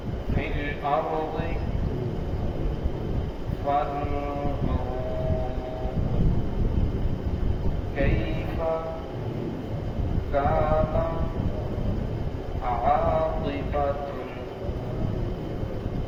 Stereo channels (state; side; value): identical; both; correlation 1.00